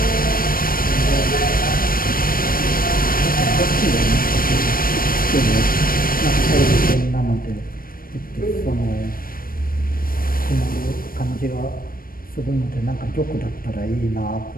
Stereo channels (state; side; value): late; right; 0.42 ms